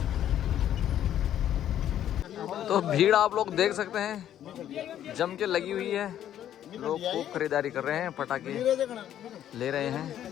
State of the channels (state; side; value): quieter; right; 11.0 dB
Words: तो भीड़ आप लोग देख सकते हैं, जम के लगी हुई है। लोग खूब खरीदारी कर रहे हैं, पटाखे ले रहे